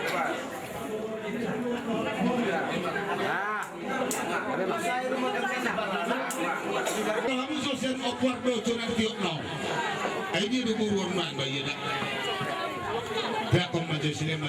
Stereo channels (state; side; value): identical; both; correlation 1.00